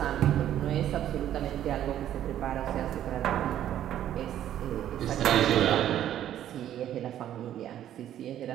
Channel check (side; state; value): left; quieter; 11.4 dB